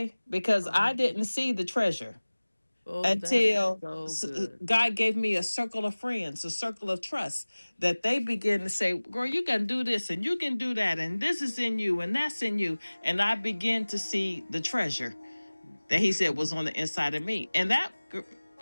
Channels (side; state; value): both; inverted; correlation -1.00